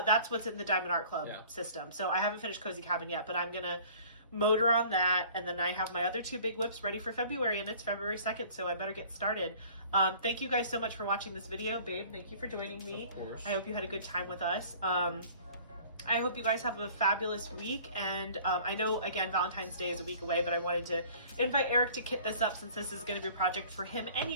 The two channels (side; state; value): both; inverted; correlation -0.50